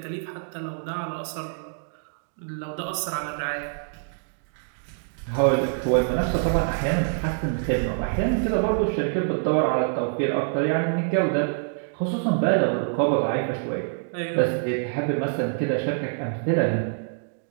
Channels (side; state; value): left; silent; digital silence